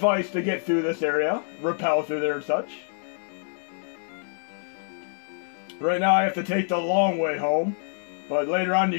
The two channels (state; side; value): silent; right; 61 dB below the other